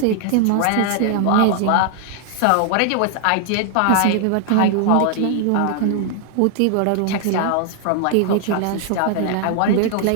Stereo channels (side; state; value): both; different; correlation 0.00